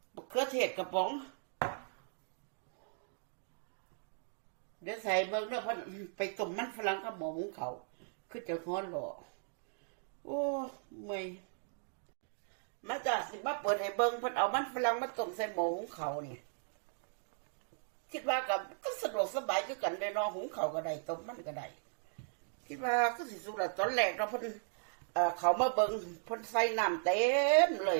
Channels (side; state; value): left; silent; digital silence